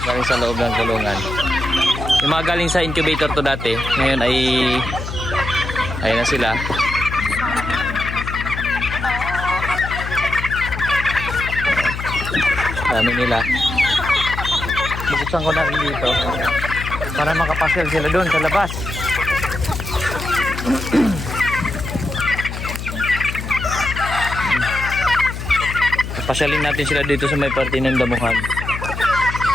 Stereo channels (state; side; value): noise; left; hum, 7 dB below the sound